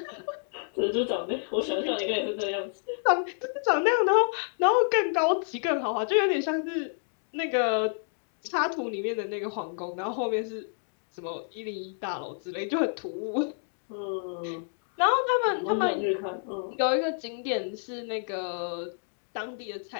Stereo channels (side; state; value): right; silent; digital silence